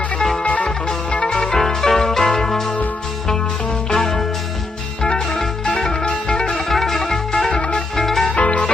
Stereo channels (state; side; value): quieter; right; 3.2 dB